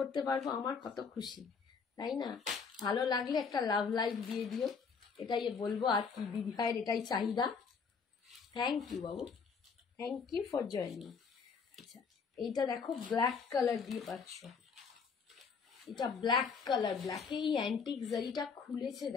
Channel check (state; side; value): quieter; right; 5.6 dB